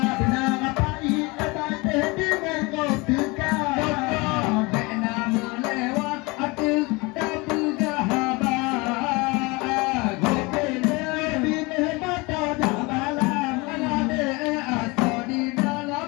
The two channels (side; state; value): right; quieter; 25.6 dB